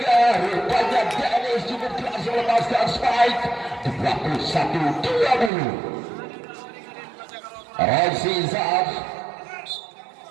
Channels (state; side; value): drops out; left; at 5.5 s